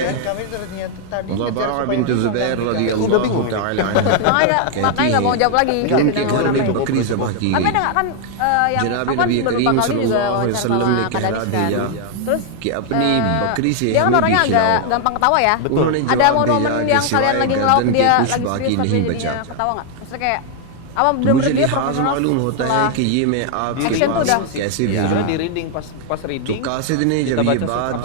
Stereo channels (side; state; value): both; different; correlation 0.00